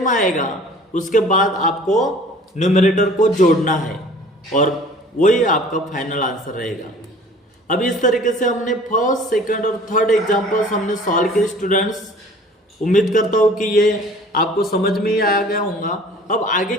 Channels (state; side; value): normal; both; correlation 0.48